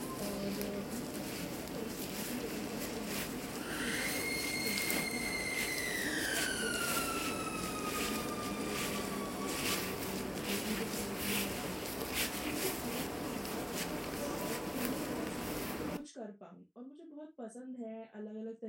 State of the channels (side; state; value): both; identical; correlation 1.00